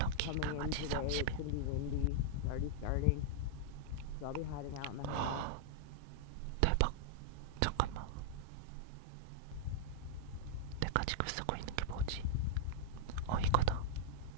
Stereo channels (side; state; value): both; different; correlation -0.01